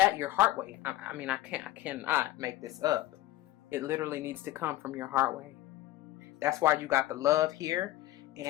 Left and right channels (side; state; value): right; quieter; 15.8 dB